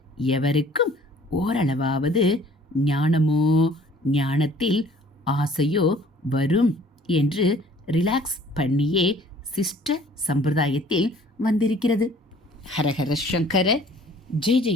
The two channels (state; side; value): normal; both; correlation 0.54